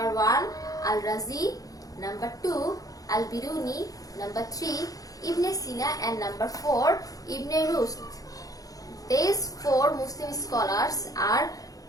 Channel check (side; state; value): right; late; 0.17 ms